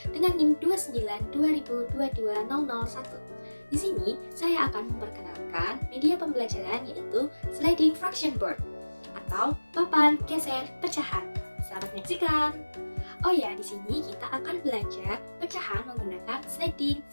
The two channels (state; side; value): inverted; both; correlation -1.00